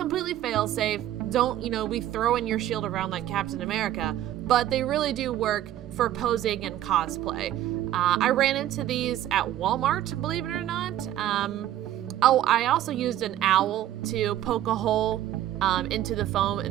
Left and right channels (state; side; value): quieter; left; 12.7 dB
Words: fail-safe. Don't, be throwing your shield around like Captain America, but they really do work for posing and cosplay. I ran into these at Walmart, believe it or not. I also used an owl to poke a hole into the foam